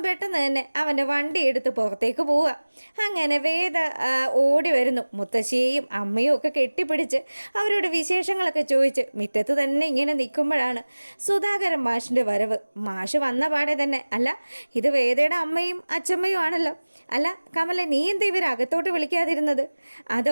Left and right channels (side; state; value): both; inverted; correlation -1.00